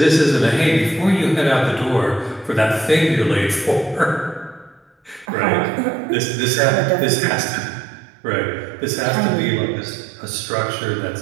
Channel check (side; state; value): left; drops out; at 5.2 s